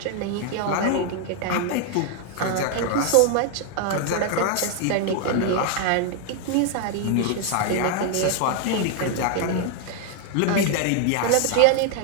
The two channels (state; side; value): different; both; correlation 0.00